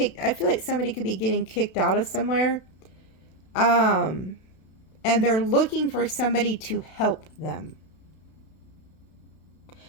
I feel like somebody could be getting kicked out of somewhere. And they're looking for somebody to help them.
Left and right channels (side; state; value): right; late; 32 ms